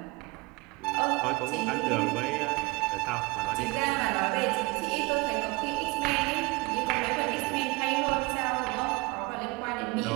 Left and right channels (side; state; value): left; quieter; 24.9 dB